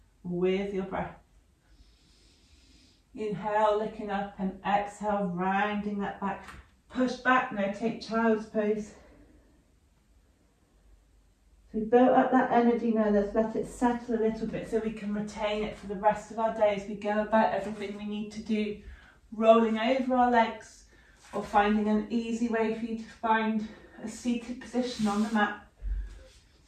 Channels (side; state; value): both; identical; correlation 1.00